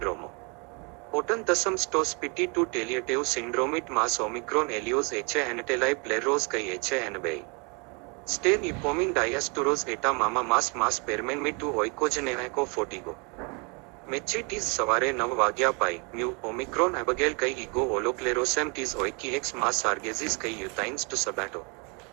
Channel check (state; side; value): quieter; left; 32.5 dB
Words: ओटन तसम स्टोस पिटी to टेलिएटिव सिंड्रोमिट mass Omicron एलियोस एचे एनेटेलाई प्लेरोस कई एचे एनबेई Stain ipomin diasturos eta mama mas permen me tu oikogeneco fortigo. Mechi tis savare nav vagya pai, mu omicron abigail kai ego oloclerosem tis oiki ex mas argesis kai utines to sabato.